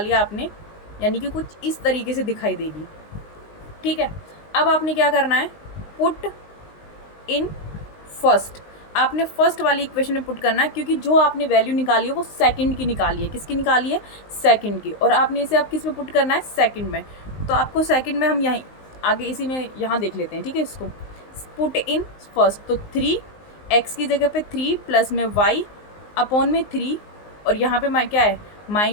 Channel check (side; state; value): right; late; 19 ms